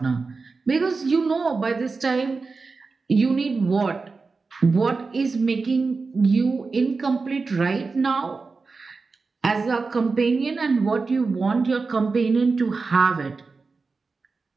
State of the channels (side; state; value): left; quieter; 4.3 dB